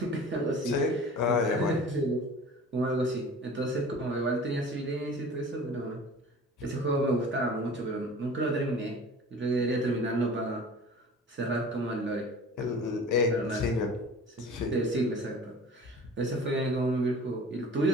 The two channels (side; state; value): both; normal; correlation 0.42